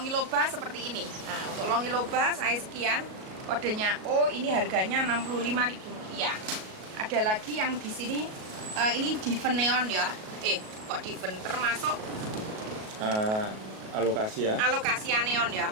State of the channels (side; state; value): left; late; 37 ms